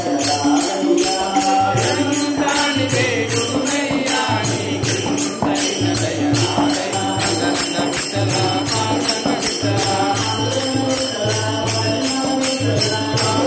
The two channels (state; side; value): identical; both; correlation 1.00